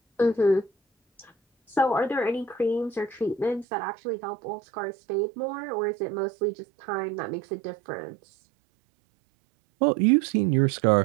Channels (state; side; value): drops out; left; at 3.7 s